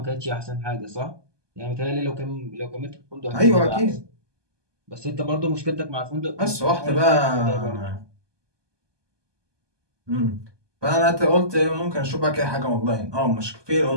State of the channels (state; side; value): late; left; 1.2 ms